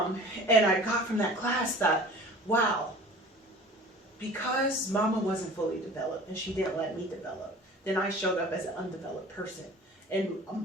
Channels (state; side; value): normal; both; correlation 0.43